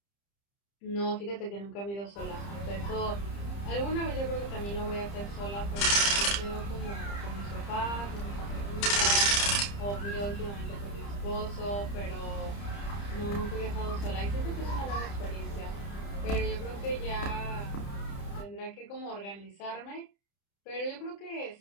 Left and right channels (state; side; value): late; right; 30 ms